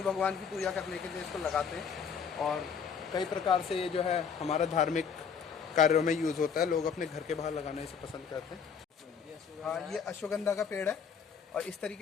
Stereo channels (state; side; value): quieter; right; 6.6 dB